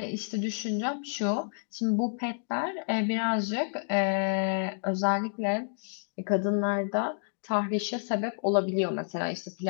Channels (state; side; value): silent; right; digital silence